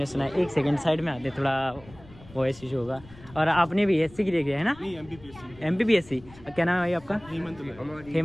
सुना है। 1 सेकंड साइड में आते, थोड़ा वॉइस इशू होगा। और आपने भी एससी क्लियर किया है ना? एमपीपीएससी। क्या नाम है भाई आपका?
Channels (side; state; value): left; noise; rumble, 22 dB below the sound